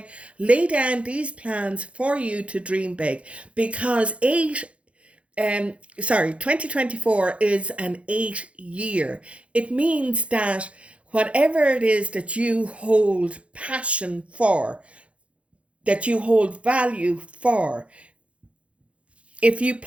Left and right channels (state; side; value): late; left; 0.062 ms